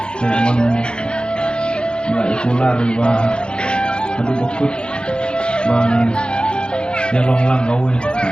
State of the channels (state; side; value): late; right; 0.051 ms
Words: Jangan nggak ikular bah. Aduh bokut bang. Dia long gawe.